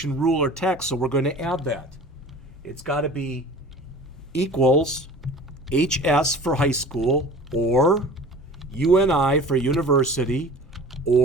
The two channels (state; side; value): normal; both; correlation 0.42